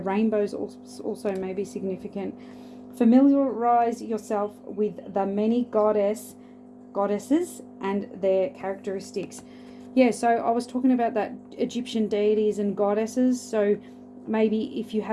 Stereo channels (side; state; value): both; identical; correlation 1.00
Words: also may be significant. Familiarize yourself with the many goddesses and their characteristics. Yeah, so I was talking about that Egyptian deities and goddesses. So maybe if you